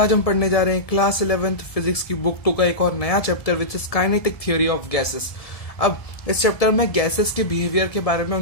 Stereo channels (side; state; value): right; late; 1.7 ms